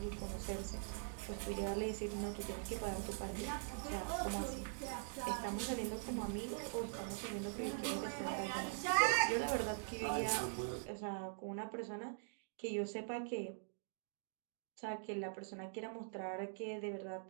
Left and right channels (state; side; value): silent; left; digital silence